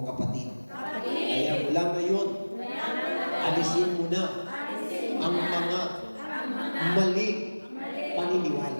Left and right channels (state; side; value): inverted; both; correlation -1.00